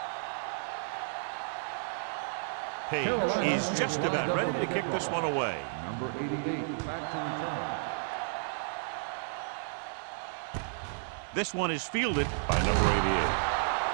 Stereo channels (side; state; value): left; silent; digital silence